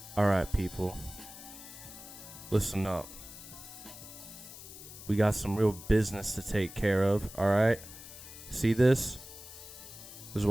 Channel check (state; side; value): noise; left; hiss, 15 dB below the sound